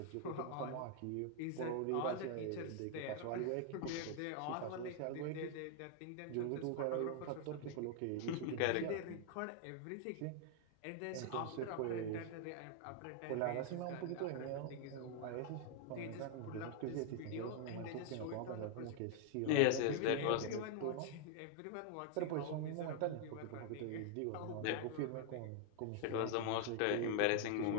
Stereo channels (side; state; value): both; different; correlation 0.00